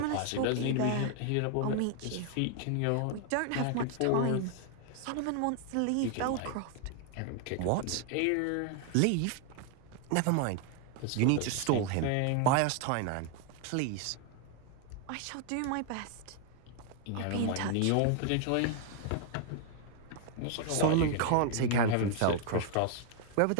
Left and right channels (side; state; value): both; different; correlation 0.00